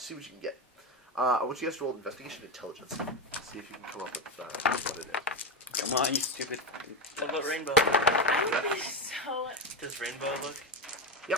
what you can get. I want you guys to roll investigation intelligence. See if you can come up with what it is. Come on, you stupid. What about Rainbow? I would be so. Does Rainbow look? Yep.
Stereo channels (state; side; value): normal; both; correlation 0.12